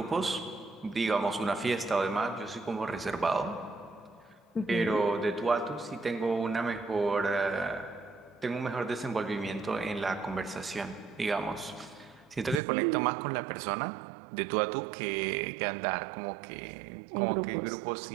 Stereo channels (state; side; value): drops out; left; at 12.6 s